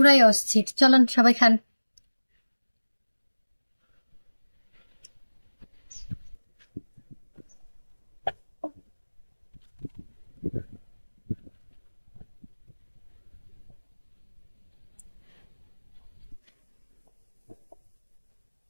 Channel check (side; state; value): both; inverted; correlation -1.00